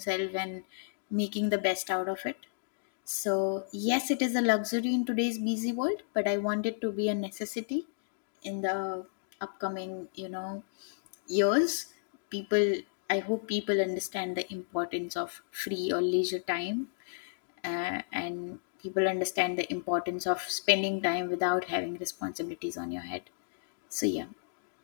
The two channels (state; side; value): silent; right; digital silence